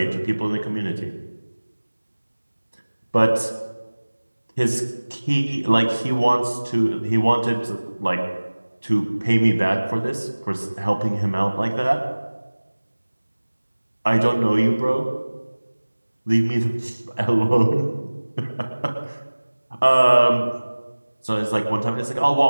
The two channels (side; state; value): both; inverted; correlation -1.00